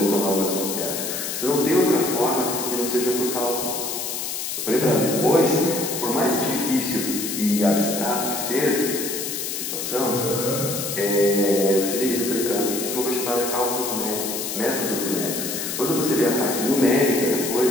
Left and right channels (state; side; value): noise; left; hiss, 4 dB below the sound